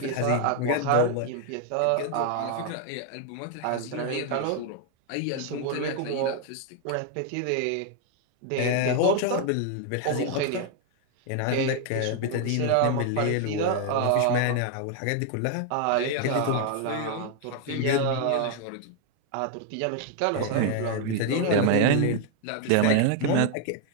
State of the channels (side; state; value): both; different; correlation 0.00